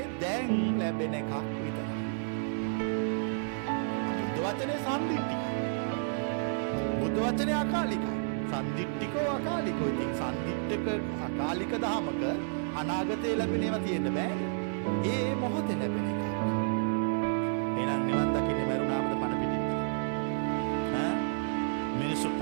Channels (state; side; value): silent; left; 57 dB below the other